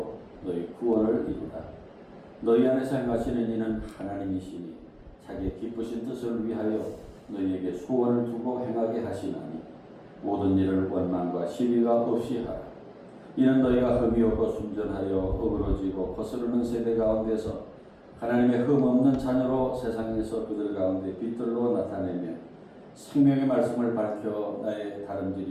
너희 구원을 이루라. 너희 안에서 행하시는 이는 하나님이시니 자기의 기쁘신 뜻을 위하여 너희에게 소원을 두고 행하게 하시나니 모든 일을 원망과 시비가 없이 하라. 이는 너희가 흠이 없고 순전하여 어그러지고 거스르는 세대 가운데서 하나님의 흠 없는 자녀로 세상에서 그들 가운데 빛들로 나타내며 생명의 말씀을 밝혀 나의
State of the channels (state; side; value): identical; both; correlation 1.00